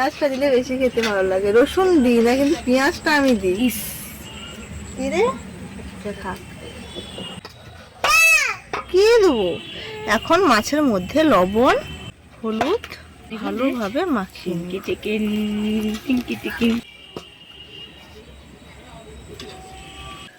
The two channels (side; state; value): both; identical; correlation 1.00